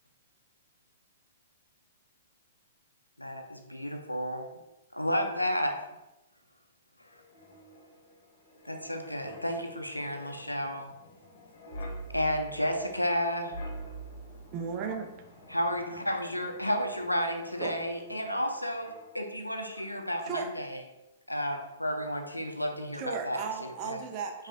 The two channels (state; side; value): inverted; both; correlation -0.74